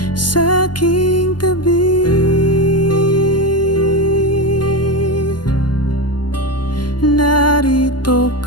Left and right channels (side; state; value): right; late; 0.70 ms